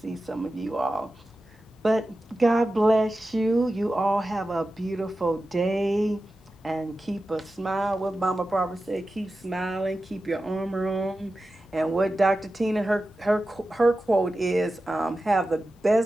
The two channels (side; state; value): both; normal; correlation 0.93